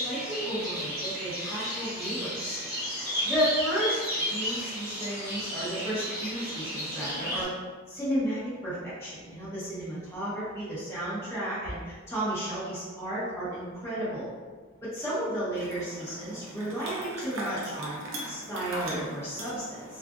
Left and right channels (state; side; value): normal; both; correlation 0.27